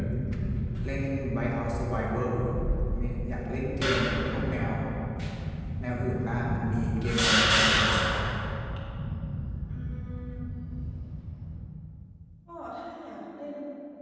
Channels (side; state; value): both; identical; correlation 1.00